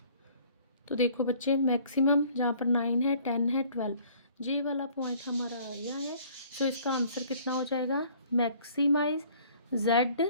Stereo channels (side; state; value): both; inverted; correlation -0.55